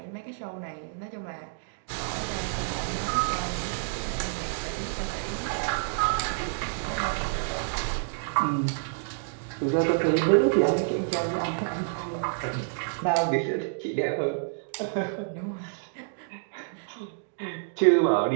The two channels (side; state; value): left; silent; digital silence